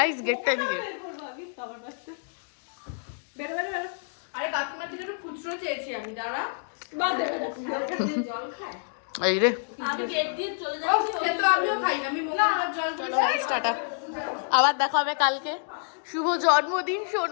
গেটটা এদিকে। আরে কাকিমা থেকে একটু খুচরো চেয়েছি আমি, দাঁড়া। এই রে আমি গেট দিয়ে চলে যাচ্ছি। তো আমিও খাই, আমি মোমোর জল টাটা, আবার দেখা হবে কালকে। শুভ জন্মদিন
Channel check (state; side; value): silent; right; digital silence